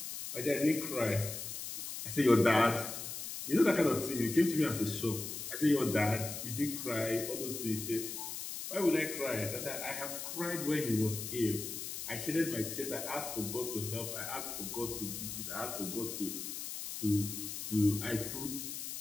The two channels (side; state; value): left; noise; hiss, 6 dB below the sound